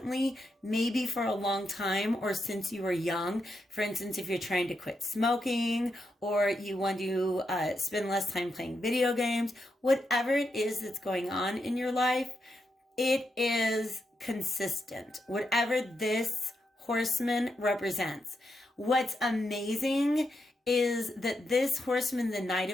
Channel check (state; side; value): normal; both; correlation 0.84